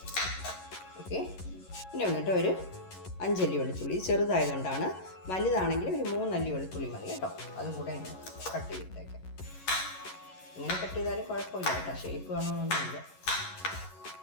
ഓക്കെ, ഇനി വന്നിട്ട് ഒരു 5 അല്ലി വെളുത്തുള്ളി, ചെറുതായതുകൊണ്ടാണ്. വലുതാണെങ്കിൽ ഒരു 3 അല്ലി വെളുത്തുള്ളി മതി കേട്ടോ. അതും കൂടെ കട്ട് ചെയ്തിട്ടേക്കാം. ഇങ്ങനെ കട്ട് ചെയ്താലും കുഴപ്പമില്ല കേട്ടോ, ഷേപ്പ് വേണമെന്നൊന്നുമില്ല.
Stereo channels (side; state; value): right; late; 11 ms